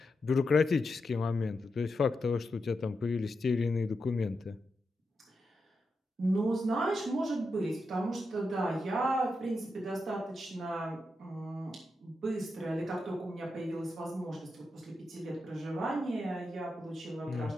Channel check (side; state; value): both; normal; correlation 0.87